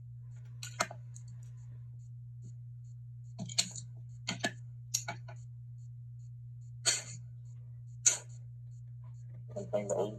I'm playing the old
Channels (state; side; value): identical; both; correlation 1.00